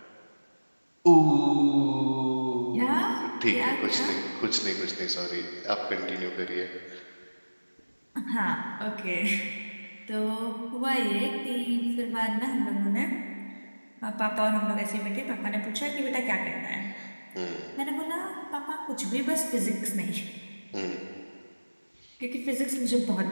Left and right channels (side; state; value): both; inverted; correlation -1.00